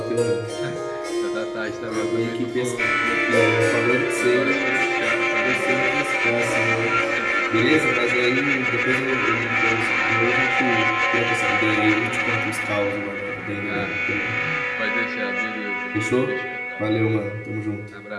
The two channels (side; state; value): both; identical; correlation 1.00